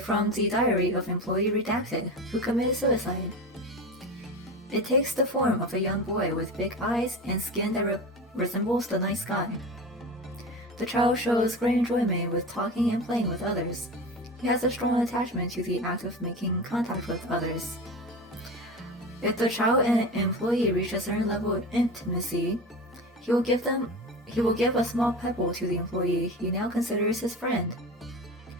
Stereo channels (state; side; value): normal; both; correlation 0.28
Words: from the diary of employee redacted, who committed suicide. It takes the form of a young boy with big eyes and skin that resembles the night sky. The child shows great enjoyment with talking and playing with others. He has a strong attachment to the act of making contact with others. If the child and employee reach a certain level of intimacy, he will give a small pebble to the employee he now considers his friend.